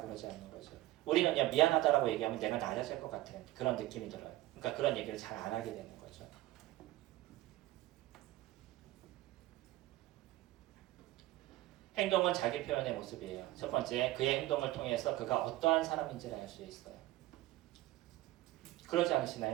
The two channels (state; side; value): quieter; left; 16.8 dB